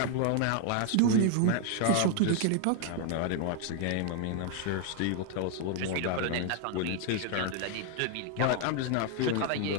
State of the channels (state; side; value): different; both; correlation 0.00